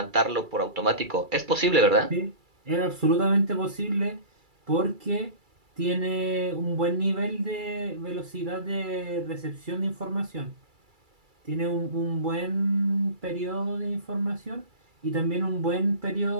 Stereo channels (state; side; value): late; left; 2.3 ms